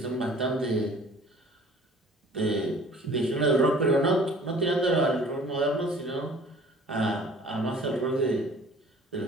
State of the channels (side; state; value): both; normal; correlation 0.49